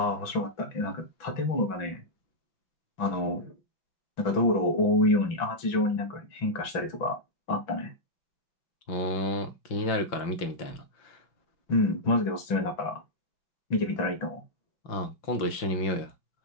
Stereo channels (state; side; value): late; right; 6.0 ms